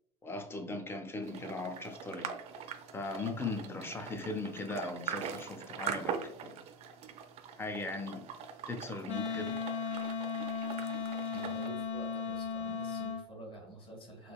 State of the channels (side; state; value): both; normal; correlation 0.10